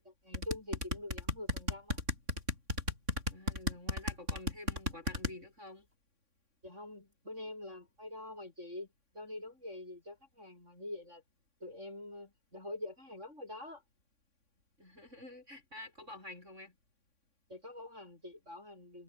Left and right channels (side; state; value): left; late; 3.6 ms